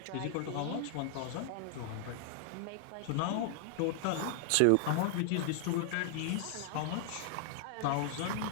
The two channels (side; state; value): both; different; correlation 0.00